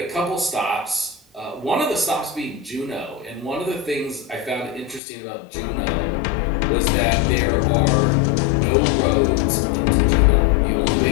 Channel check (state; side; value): drops out; right; at 5.0 s